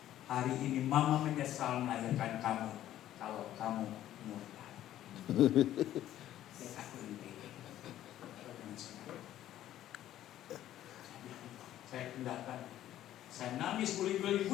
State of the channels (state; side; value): quieter; right; 12.7 dB